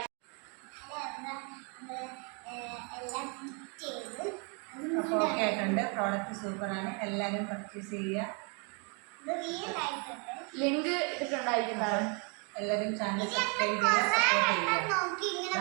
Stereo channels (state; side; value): quieter; left; 35.7 dB